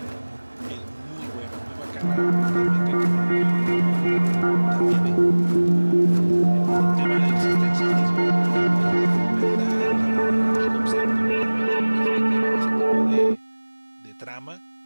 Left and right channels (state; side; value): inverted; both; correlation -1.00